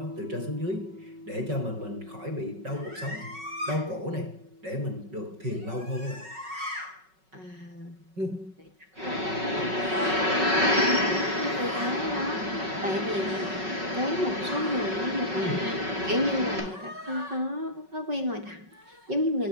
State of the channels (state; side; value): late; left; 5.4 ms